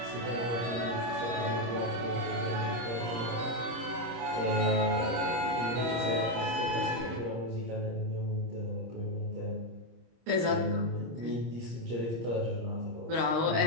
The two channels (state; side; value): late; left; 26 ms